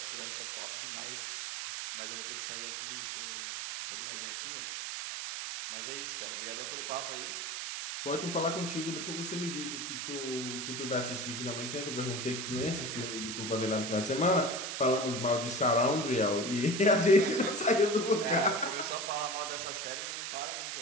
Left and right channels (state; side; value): noise; right; hiss, 4 dB below the sound